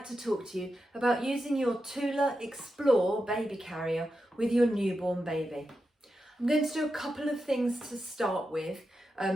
to talk to you about using your Tula Explore Baby Carrier with your newborn baby. I'm going to do a couple of things to start with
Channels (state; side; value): normal; both; correlation 0.89